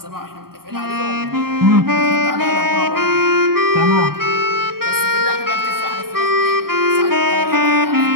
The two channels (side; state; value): left; late; 0.93 ms